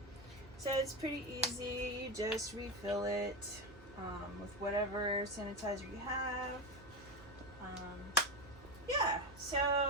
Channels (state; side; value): noise; right; hum, 20 dB below the sound